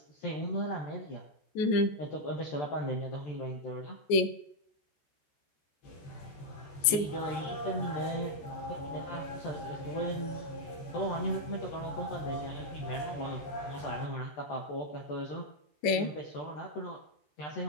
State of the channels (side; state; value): right; late; 14 ms